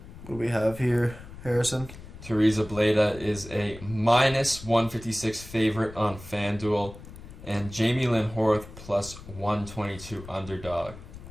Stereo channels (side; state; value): left; noise; rumble, 15 dB below the sound